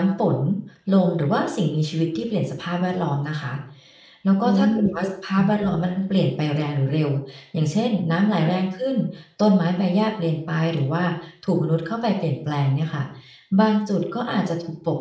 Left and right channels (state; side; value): identical; both; correlation 1.00